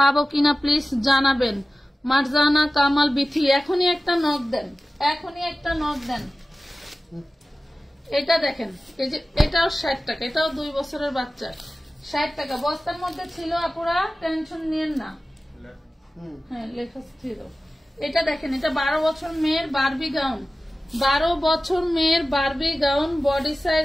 কিনা প্লিজ জানাবেন। মারজানা কামাল বিথি, এখনই একটা নক দেন, এখনই একটা নক দেন। এটা দেখেন, এই যে এটাও 60 টাকা, এটাও 2 বছরের বাচ্চা। 60 টাকা বস্তার মধ্যে ছিল, আপুরা টেনশন নিয়েন না। হ্যাঁ, লেখা ছিল। এটা দেখেন, এটা 12 বছর মেয়ের বারবি গাউন, 12 বছর মেয়ের বারবি গাউন। বডি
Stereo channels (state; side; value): normal; both; correlation 0.96